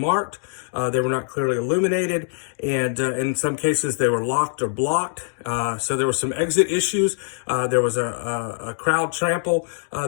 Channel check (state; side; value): silent; right; digital silence